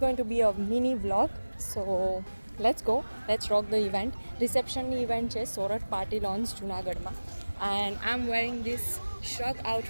to be a mini vlog. So let's rock the event. Reception event is Sorat Party Launch Junagadh ma, and I'm wearing this shrug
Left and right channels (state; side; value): inverted; both; correlation -1.00